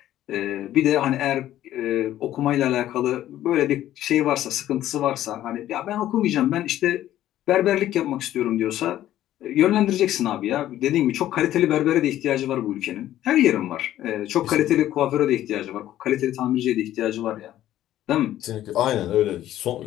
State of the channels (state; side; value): quieter; right; 13.0 dB